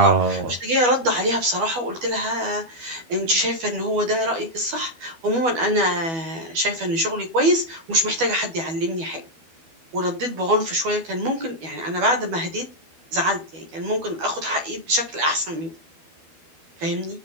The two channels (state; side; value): late; left; 12 ms